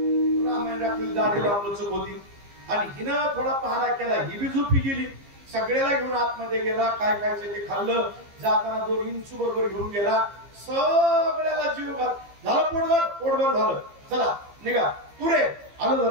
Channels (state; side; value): late; left; 15 ms